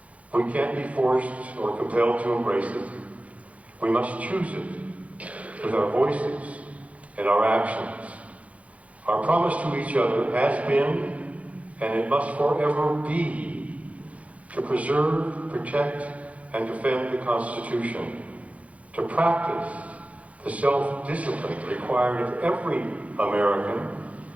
We can't be forced or compelled to embrace it. We must choose it with our voices and our actions. Our promise to each other has been, and it must forever be, to preserve, protect, and defend the Constitution, to practice the self-discipline required of every American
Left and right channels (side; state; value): left; late; 0.066 ms